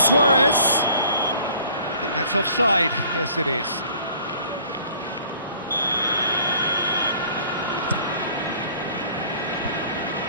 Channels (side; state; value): both; inverted; correlation -0.52